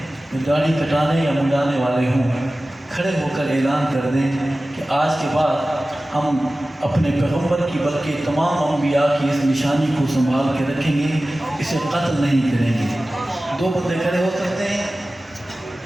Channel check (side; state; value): both; normal; correlation 0.96